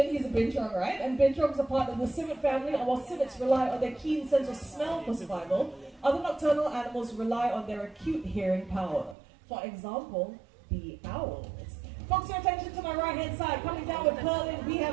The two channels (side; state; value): left; drops out; at 9.2 s